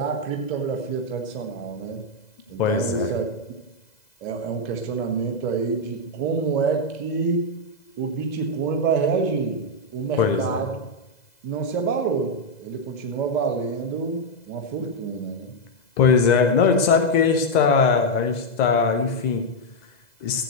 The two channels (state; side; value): late; right; 2.0 ms